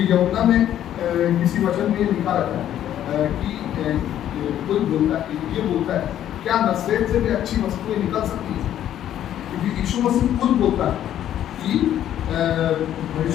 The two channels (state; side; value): quieter; right; 11.2 dB